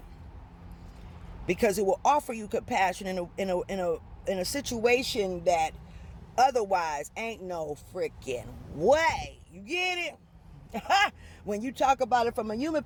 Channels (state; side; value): identical; both; correlation 1.00